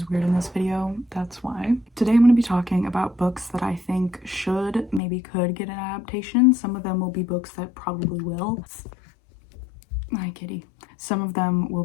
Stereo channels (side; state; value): right; drops out; at 5.0 s